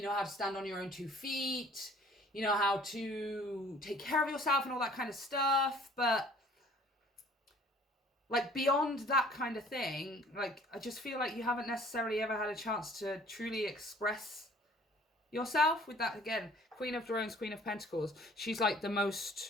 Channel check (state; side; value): normal; both; correlation 0.54